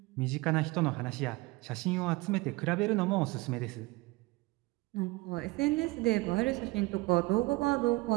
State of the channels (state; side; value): quieter; left; 22.4 dB